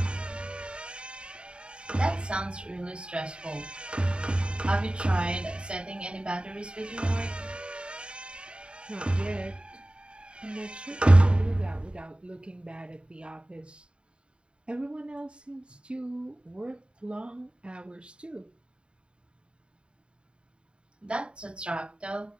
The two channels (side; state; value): left; late; 0.053 ms